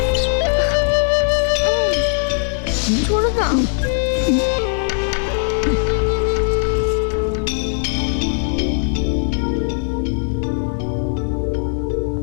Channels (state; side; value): silent; right; 58 dB below the other